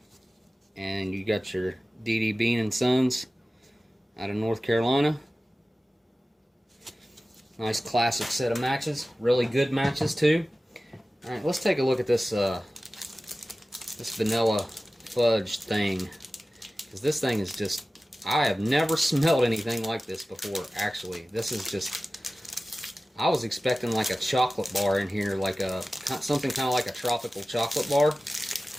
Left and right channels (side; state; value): both; normal; correlation 0.96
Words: and you got your DD Bean and Sons out of North Carolina. Nice classic set of matches, really good matches too. All right, let's take a look at this this vanilla fudge thing, because this thing is just, I have never smelled anything like this before. Actually, this is just, I was expecting like a chocolate bar in here, like a something kind of like a tropical chocolate bar,